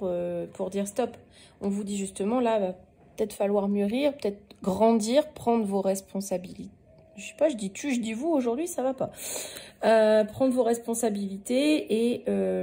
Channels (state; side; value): identical; both; correlation 1.00